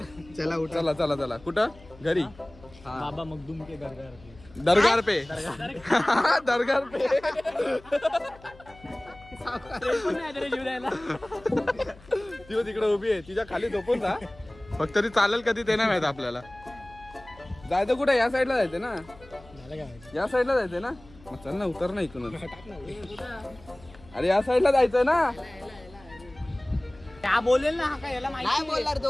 चला उठ. चला चला चला. कुठं? घरी. बाबा मखदूम के घर घर दरगार पे. दरगार पे. जीव द्यायला. ती तिकडे उभी आहे. तिच्या खाली झोपून जा. फक्त ती चालेल कधी ते नाही माहित आपल्याला. जायचं कुठे? या साईडला जायचं ना. या साईडला जायचंय ना. मग चल ना उतर ना इकडून. अरे या साईडला जायचंय ना. क्या बोलेल ना. हा काय याला माहिती नाही बोलणार तो.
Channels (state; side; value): noise; left; hum, 23 dB below the sound